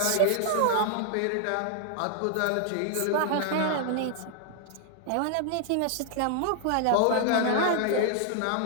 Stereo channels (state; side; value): different; both; correlation 0.00